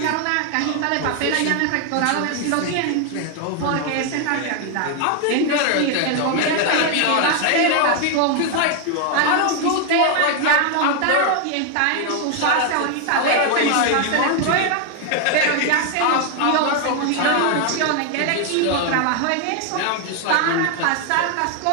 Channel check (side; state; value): both; different; correlation 0.00